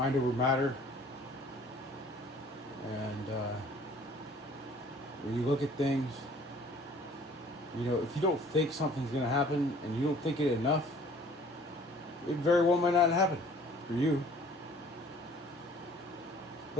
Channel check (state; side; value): normal; both; correlation 0.53